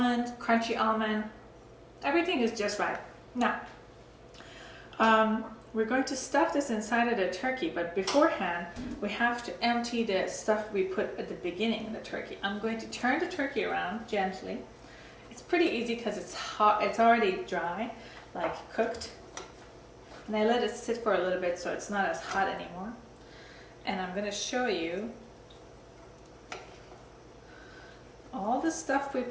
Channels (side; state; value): both; identical; correlation 1.00